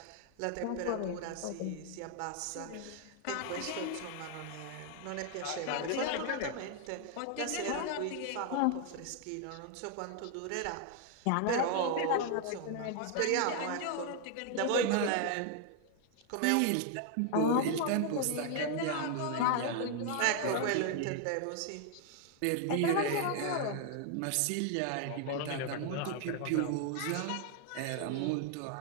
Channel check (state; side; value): different; both; correlation 0.00